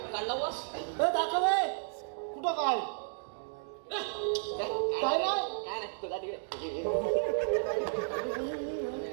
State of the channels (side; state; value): left; silent; digital silence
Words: काढला वास दाखव कुठं काय काय नाही तुला तिकडे